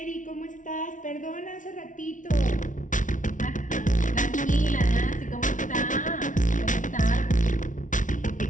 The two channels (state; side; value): late; right; 0.37 ms